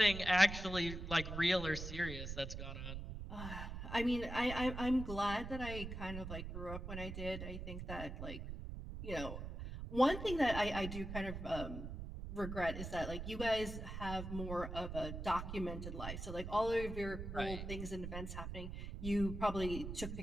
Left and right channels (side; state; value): right; noise; rumble, 7 dB below the sound